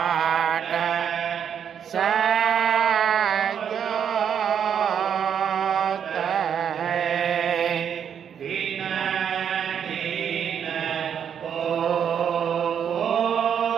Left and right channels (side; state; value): left; quieter; 8.2 dB